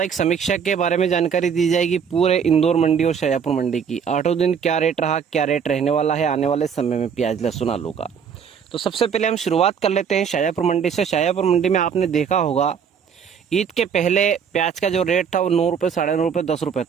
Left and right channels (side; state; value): left; quieter; 7.1 dB